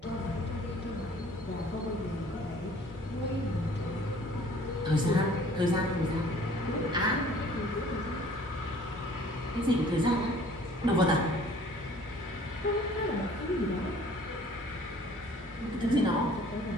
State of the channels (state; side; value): normal; both; correlation 0.53